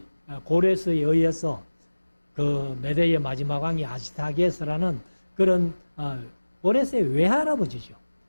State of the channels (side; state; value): both; inverted; correlation -1.00